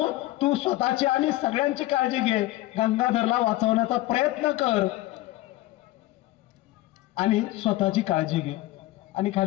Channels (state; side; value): quieter; right; 17.3 dB